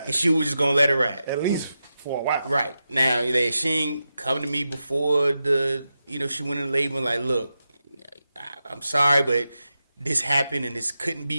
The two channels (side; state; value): both; inverted; correlation -0.90